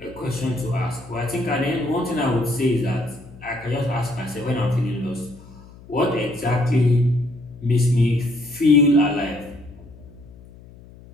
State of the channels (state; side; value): noise; left; hum, 21 dB below the sound